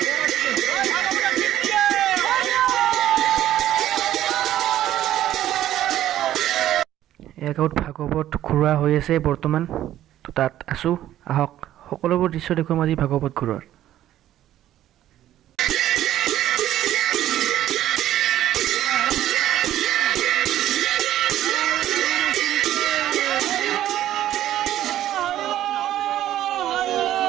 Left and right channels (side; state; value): left; quieter; 12.7 dB